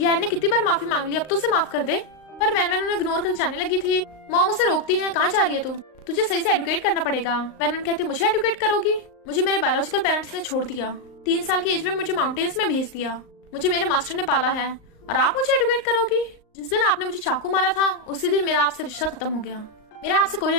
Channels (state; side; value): late; right; 38 ms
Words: ने कितनी बार माफी मांग ली, अब तो उसे माफ कर दे। पर वैन उन्हें इग्नोर कर जाने लगी थी। मॉम उसे रोकती है कहाँ जा रही है तू, तुझे सही से एडुकेट करना पड़ेगा। वैन कहती है मुझे एडुकेट करोगी? मुझे मेरे बायोलॉजिकल पेरेंट्स ने छोड़ दिया, 3 साल की एज में मुझे माउंटेन्स में भेज दिया, मुझे मेरे मास्टर ने पाला है और आप मुझे एडुकेट करोगी? जिस दिन आपने मुझे चाकू मारा था उसी दिन मेरा आपसे रिश्ता खत्म हो गया, मेरा आपसे कोई